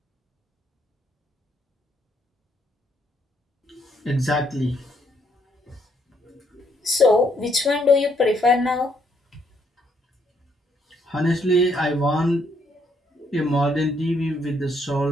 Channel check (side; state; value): both; normal; correlation 0.72